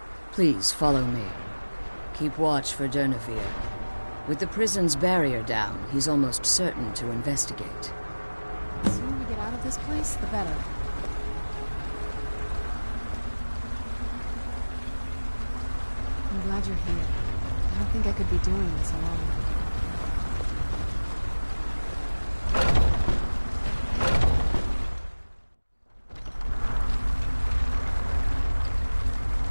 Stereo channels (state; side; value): inverted; both; correlation -1.00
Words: Please follow me. Keep watch for Durnevere. With the prison's barrier down, he's almost certain to investigate. The sooner we get out of this place, the better. I'm glad you're here. I don't think I could be doing this alone.